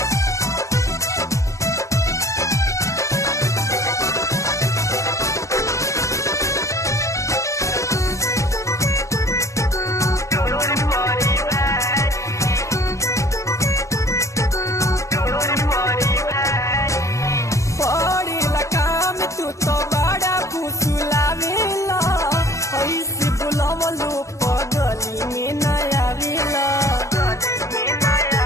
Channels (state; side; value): late; right; 0.15 ms